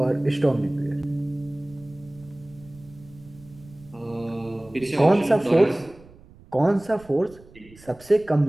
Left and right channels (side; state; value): right; noise; rumble, 23 dB below the sound